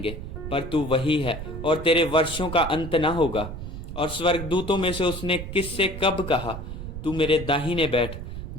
पर तू वही है, और तेरे वर्षों का अंत न होगा। और स्वर्गदूतों में से उसने किससे कब कहा, तू मेरे दाहिने बैठ,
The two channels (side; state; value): right; noise; rumble, 8 dB below the sound